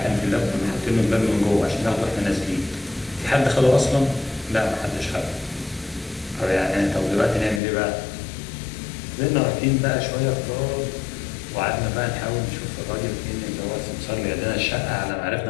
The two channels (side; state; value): right; drops out; at 7.6 s